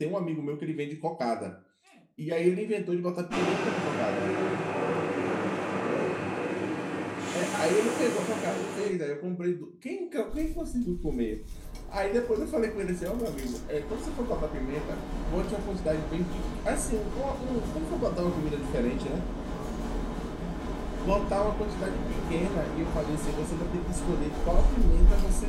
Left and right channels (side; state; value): both; identical; correlation 1.00